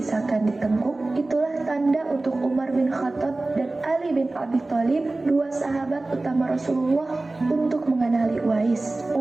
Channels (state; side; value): quieter; left; 3.0 dB